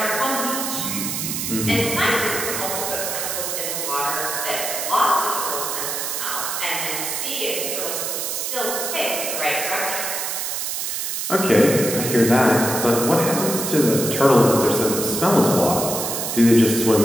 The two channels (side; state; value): right; noise; hiss, 3 dB below the sound